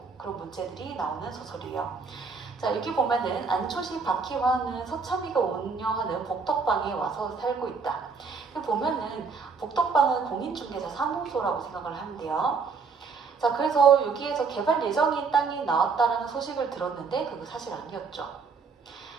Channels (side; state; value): left; quieter; 5.0 dB